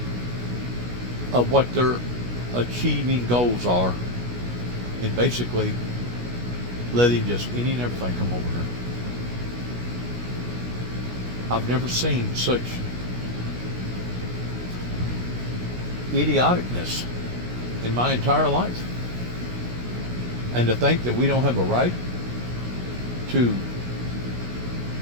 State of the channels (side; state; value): left; late; 16 ms